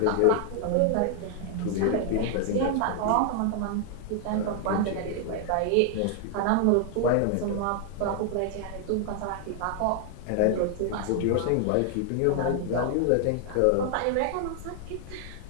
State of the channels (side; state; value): both; different; correlation 0.00